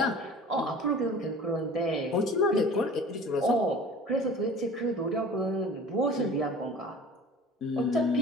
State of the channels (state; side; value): normal; both; correlation 0.43